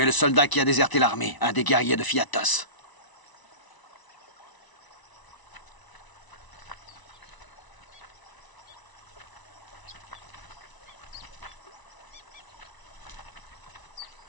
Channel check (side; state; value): right; late; 1.0 ms